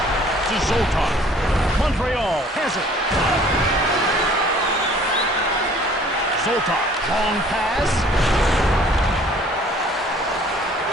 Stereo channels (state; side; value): normal; both; correlation 0.54